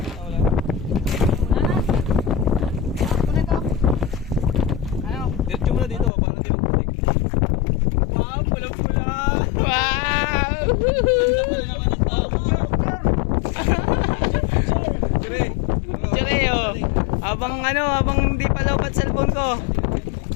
Diretso mo na dito, parang di magputik. Wow, pula-pula. Wow! Ganda pala naman ang tama. Dire. Tsure, oh. Habang hindi pa lobat cellphone ko.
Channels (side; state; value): right; drops out; at 6.1 s